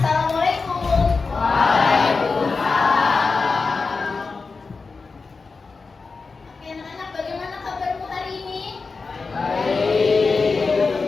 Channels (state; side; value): quieter; right; 4.4 dB